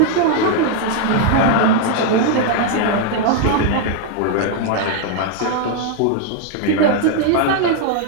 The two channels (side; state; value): both; different; correlation 0.00